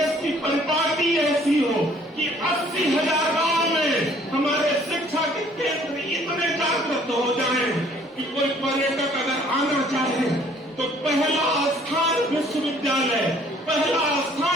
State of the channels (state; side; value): normal; both; correlation 0.58